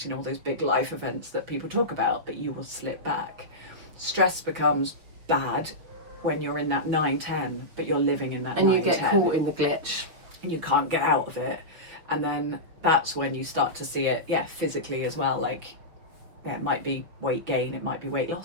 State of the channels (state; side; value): late; left; 6.4 ms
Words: All those big life events that people talk about. But you will slip back. Stress becomes bad when you're in that 9-10, but you're living in that 9-10. And you get caught in the glitch. And you can't get out of it. And then that's when you start to see it, physically as well. Like, it might be weight gain, it might be weight